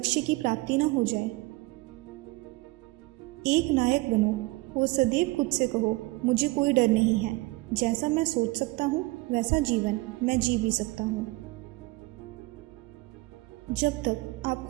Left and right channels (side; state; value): left; quieter; 22.8 dB